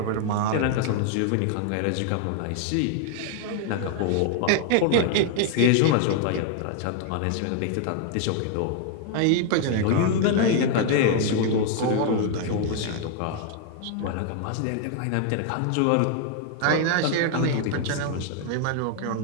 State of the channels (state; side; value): different; both; correlation 0.00